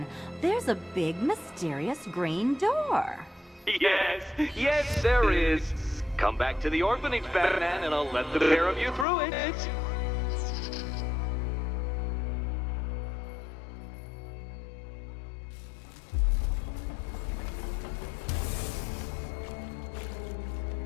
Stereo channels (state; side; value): drops out; right; at 9.1 s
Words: there's a big, mysterious green door. Yes, there is. Come back to the orphanage, Batman, and I'll let the pair of you through it.